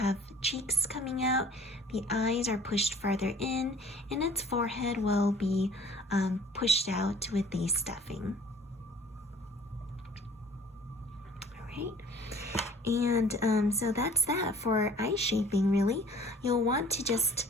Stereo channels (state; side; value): normal; both; correlation 0.52